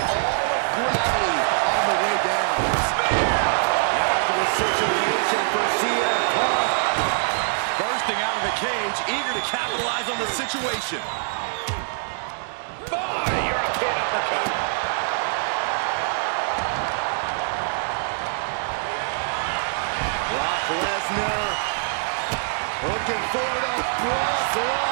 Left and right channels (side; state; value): left; silent; digital silence